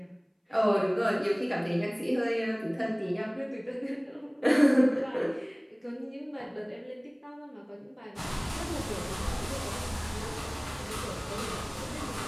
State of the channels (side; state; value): both; identical; correlation 1.00